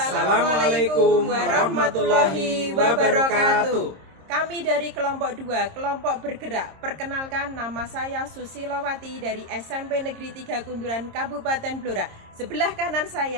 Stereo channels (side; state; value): left; late; 26 ms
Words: warahmatullahi wabarakatuh. Kami dari kelompok 2, kelompok bergerak. Perkenalkan, nama saya Susilowati dari SMP Negeri 3 Kunduran, Kabupaten Blora. Sebelah kanan